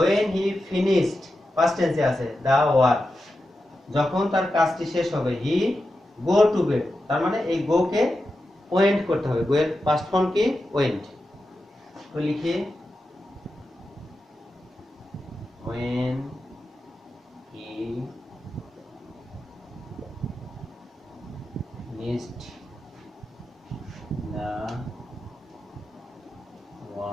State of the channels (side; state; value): both; normal; correlation 0.90